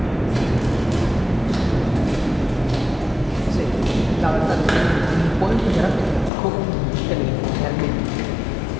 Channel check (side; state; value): right; drops out; at 6.3 s